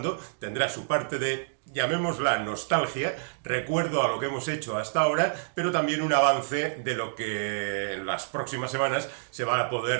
tendrá su parte de, llamémosla, nostalgia, recuerdo a lo que hemos hecho hasta ahora, pero también un avance de lo que en las próximas semanas se va a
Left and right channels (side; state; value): left; silent; digital silence